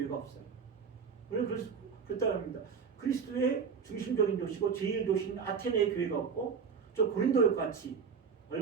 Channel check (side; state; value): left; quieter; 6.1 dB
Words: 없어요. 우리는 그렇다고 합니다. 그리스도의 중심적인 도시고 제일 도시인 아테네의 교회가 없고 저 고린도 같이